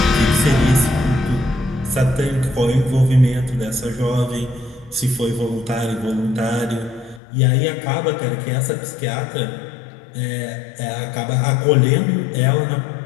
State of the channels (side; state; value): right; drops out; at 7.2 s